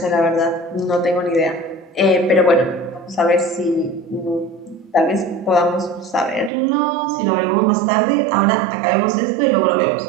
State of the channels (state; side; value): drops out; left; at 6.5 s